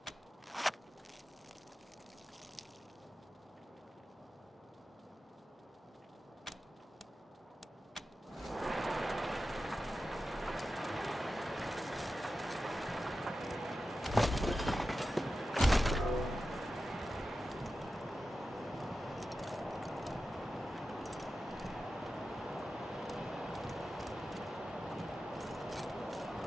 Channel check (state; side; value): normal; both; correlation 0.92